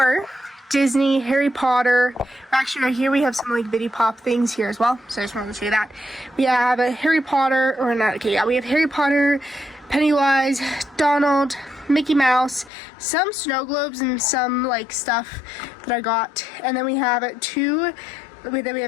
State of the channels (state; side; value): drops out; right; at 12.7 s